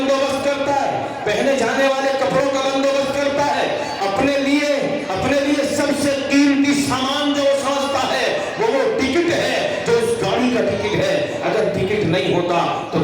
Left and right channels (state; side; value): identical; both; correlation 1.00